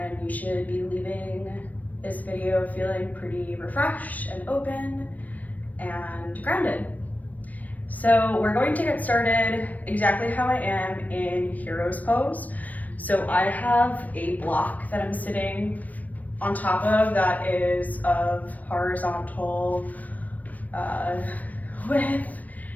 you should be leaving this video feeling pretty refreshed and open and grounded. So we're going to get started exactly how I am in hero's pose. So I have a block that I'm sitting on top of that is of horizontal width,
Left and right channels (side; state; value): right; late; 0.076 ms